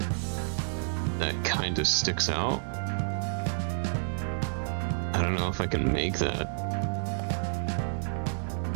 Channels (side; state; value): left; silent; 58 dB below the other